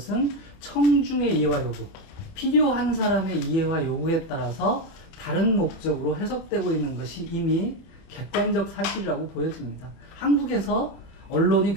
청중의 이해와 요구, 필요한 사람의 이해와 요구에 따라서 다른 목적으로 해석되고 있는 것이 이미 객관적 사실이라고 보여집니다. 한국에서 언론이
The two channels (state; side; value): late; right; 31 ms